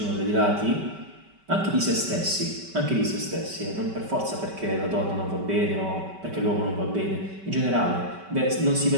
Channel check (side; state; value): left; late; 5.2 ms